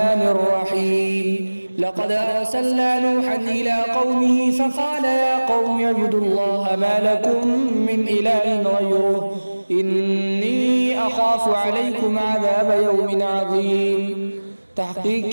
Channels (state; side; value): inverted; both; correlation -1.00